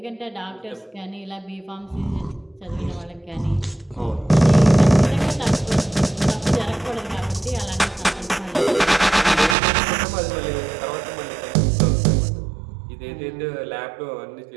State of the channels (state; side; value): drops out; left; at 9.6 s